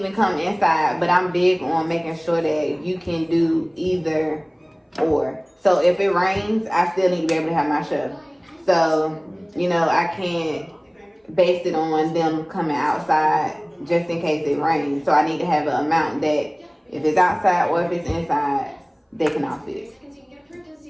come inside, but I'm big on making sure that you can do either or. So if it rains, I still need to be able to have my show. So, you know, I can't base it on them coming outside just in case it rains. So I need to have an amount that if it's outside or if it's inside, they can all fit.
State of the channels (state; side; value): identical; both; correlation 1.00